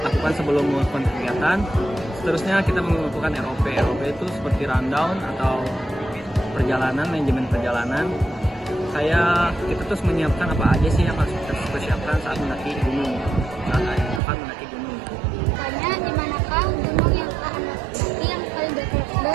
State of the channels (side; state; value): left; drops out; at 14.2 s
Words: lakukan sebelum melakukan kegiatan. Seterusnya kita melakukan ROP. ROP itu seperti rundown atau perjalanan, manajemen perjalanan. Kita terus menyiapkan apa aja sih yang harus kita persiapkan saat mendaki gunung, saat akan mendaki gunung. Tanya di manakah gunung yang Anda daki yang paling